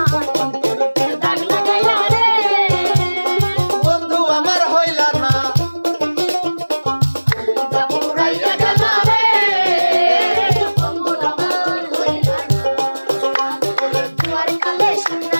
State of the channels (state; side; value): inverted; both; correlation -1.00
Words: অন্তরেতে দাগ লাগাইলা রে বন্ধু আমার হইলা না পুরাইয়া গেলা রে বন্ধু আমার হইলা না দুয়ার কালে শুননা